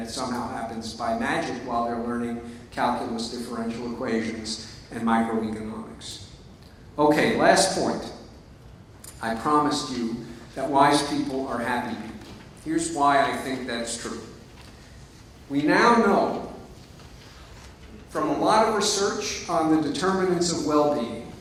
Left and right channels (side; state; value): both; identical; correlation 1.00